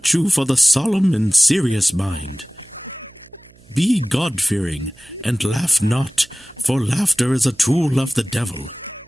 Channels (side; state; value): right; noise; hum, 27 dB below the sound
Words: for the solemn and serious mind. Be God-fearing, and laugh not, for laughter is a tool of the devil.